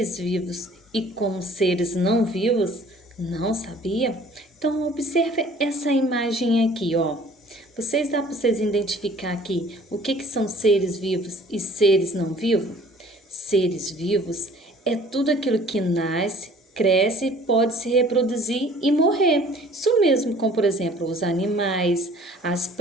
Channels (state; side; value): normal; both; correlation 0.52